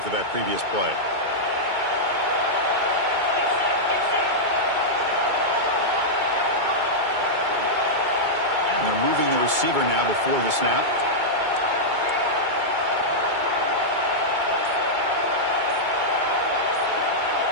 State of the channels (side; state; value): left; late; 2.2 ms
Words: that previous play. receiver now before the snap.